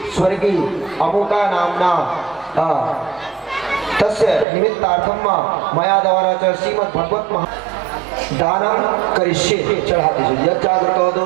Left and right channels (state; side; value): drops out; left; at 4.5 s